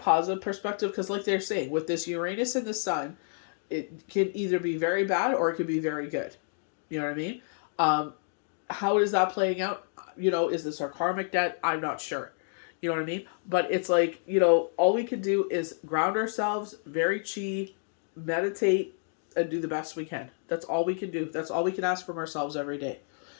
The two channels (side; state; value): right; silent; digital silence